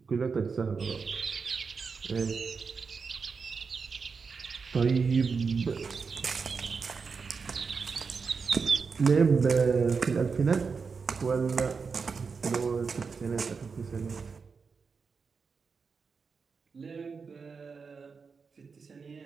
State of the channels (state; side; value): quieter; left; 5.2 dB